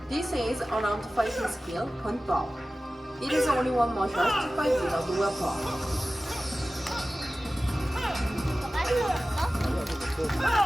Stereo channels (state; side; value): normal; both; correlation 0.96